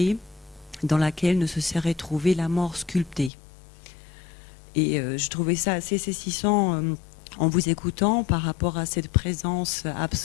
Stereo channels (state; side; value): drops out; right; at 3.3 s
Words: dans laquelle ne se serait trouvée la mort sculptée. Et je trouvais ça assez saisissant en vous écoutant par rapport à cette